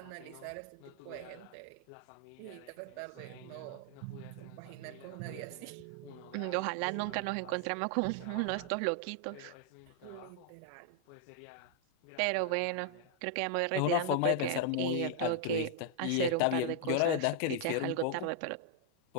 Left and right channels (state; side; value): different; both; correlation 0.00